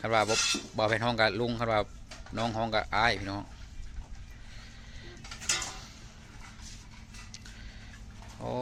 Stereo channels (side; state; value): both; identical; correlation 1.00